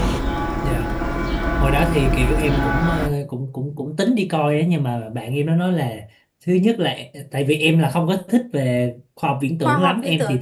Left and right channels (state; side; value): identical; both; correlation 1.00